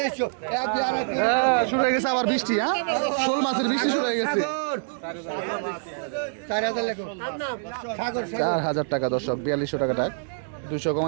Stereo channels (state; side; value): silent; left; 61 dB below the other